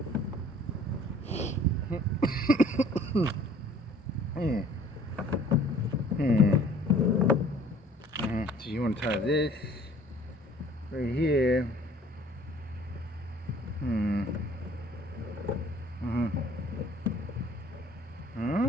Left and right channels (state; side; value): normal; both; correlation 0.53